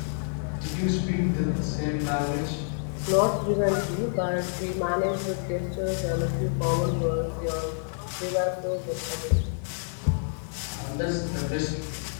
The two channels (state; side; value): silent; right; digital silence